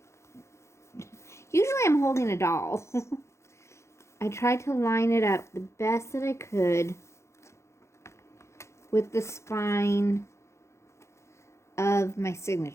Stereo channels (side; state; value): right; late; 0.14 ms